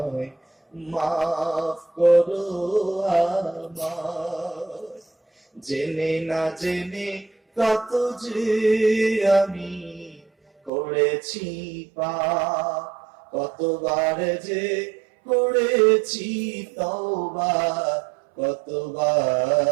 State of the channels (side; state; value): left; drops out; at 10.7 s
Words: মাফ করো আমায়। জেনে না জেনে কত যে আমি করেছি পাপ, কতবার যে করেছি তওবা,